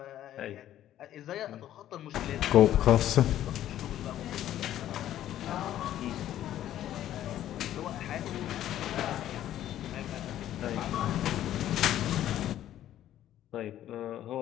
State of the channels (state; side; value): quieter; right; 12.2 dB